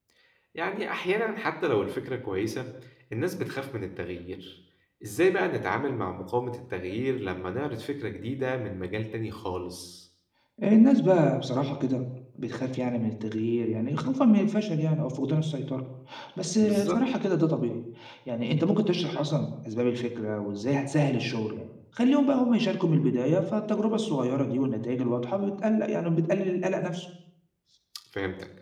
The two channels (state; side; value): identical; both; correlation 1.00